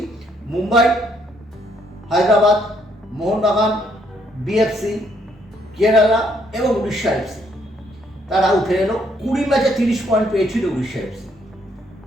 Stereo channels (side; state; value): both; normal; correlation 0.70